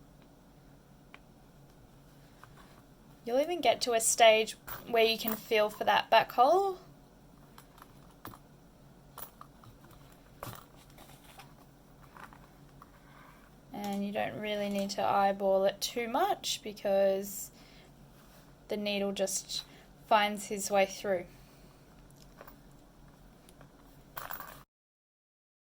You'll even get to a stage where you can feel for that back hole. And you don't really need to eyeball it too much because the needle just finds his way through.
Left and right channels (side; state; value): both; identical; correlation 1.00